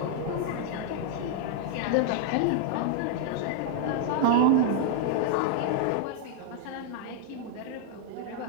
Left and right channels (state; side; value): different; both; correlation -0.01